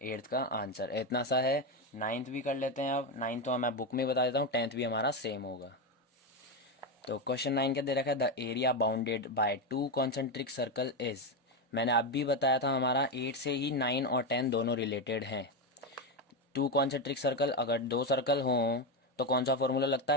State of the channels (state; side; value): normal; both; correlation 0.10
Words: 8th का आंसर। इतना सा है। 9th भी कर लेते हैं। अब 9th तो मैं बुक में बता देता हूँ, 10th भी हमारा सेम होगा। तो क्वेश्चन 9 क्या दे रखा है, the area bounded by 2 concentric circle is. मैंने अब भी बताया था हमारा 8 से ही 9 और 10 दोनों रिलेटेड हैं। 2 कॉन्सेंट्रिक सर्कल, अगर दो सर्कल हों तो कौन सा फॉर्मूला लगता